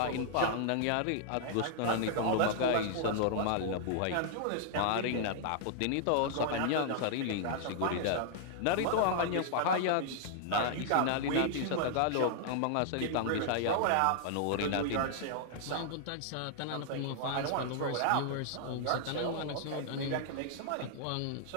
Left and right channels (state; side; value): different; both; correlation -0.01